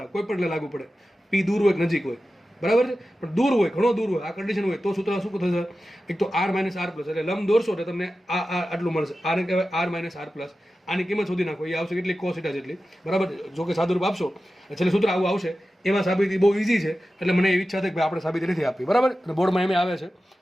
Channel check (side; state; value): both; normal; correlation 0.94